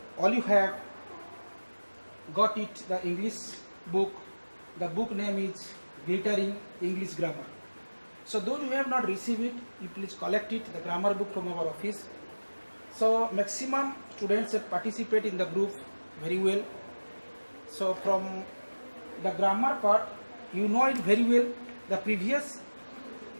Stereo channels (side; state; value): both; inverted; correlation -1.00